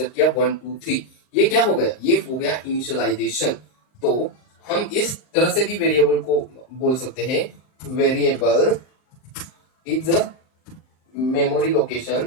किया 1 2 3। ये क्या हो गया? ये हो गया इनिशियलाइजेशन। तो हम इस तरह से भी वेरिएबल को बोल सकते हैं, variable is a memory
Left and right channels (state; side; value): late; right; 39 ms